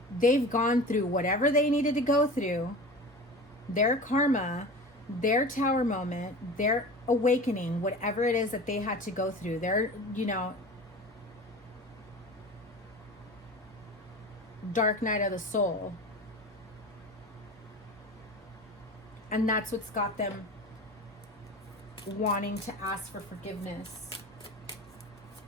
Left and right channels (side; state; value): both; normal; correlation 0.34